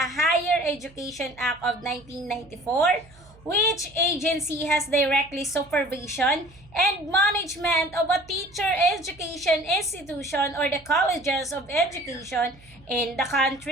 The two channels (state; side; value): noise; right; hum, 25 dB below the sound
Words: Higher Education Act of 1994, which agency has directly supervision and management of a teacher education institution or the colleges of education in the